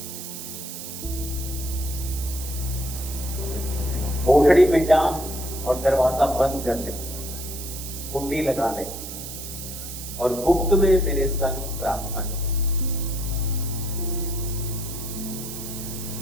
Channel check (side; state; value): right; noise; hiss, 9 dB below the sound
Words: कोठड़ी में जा और दरवाजा बंद कर ले, कुंडी लगा ले और गुप्त में मेरे संग प्रार्थना कर।